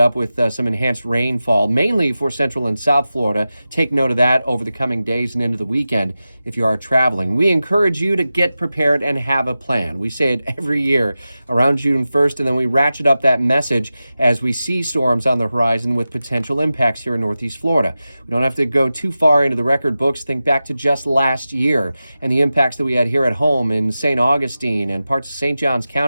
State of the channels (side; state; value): both; inverted; correlation -0.93